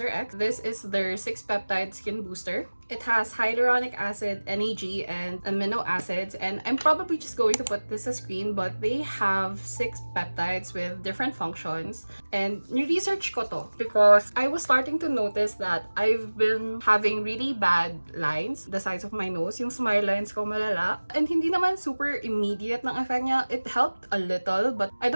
This is their 6-peptide skin booster. It has hyaluronic acid, NAG, and amino acids, and I'm probably just going to put this as screen, but they have 6 peptides with different functions. And ni-research ko to because I was starting to notice that I've been having really bad lines, the sides of my nose, yung smile lines ko malala. And hindi naman super immediate ng effect niya. It helped a little, but I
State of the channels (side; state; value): both; inverted; correlation -1.00